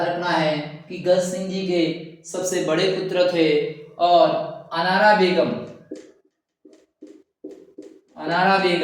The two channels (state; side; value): identical; both; correlation 1.00